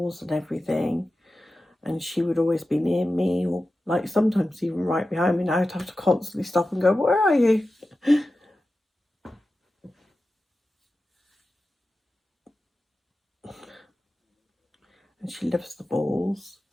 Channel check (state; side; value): normal; both; correlation 0.93